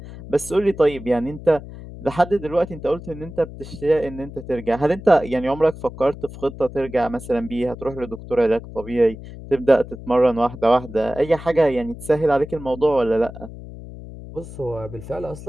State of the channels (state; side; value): noise; left; hum, 14 dB below the sound